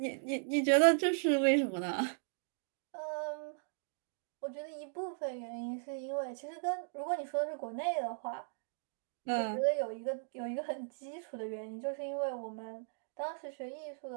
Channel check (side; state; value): left; silent; digital silence